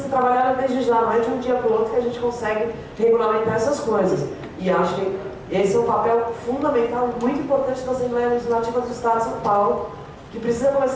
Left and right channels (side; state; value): both; identical; correlation 1.00